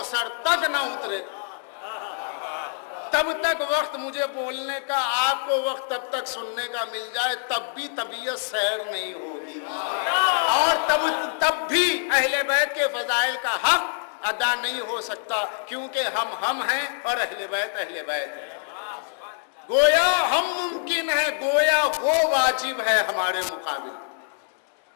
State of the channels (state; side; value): silent; right; digital silence